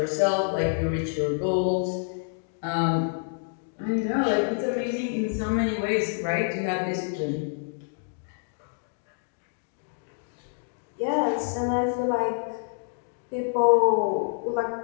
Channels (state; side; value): silent; right; 60 dB below the other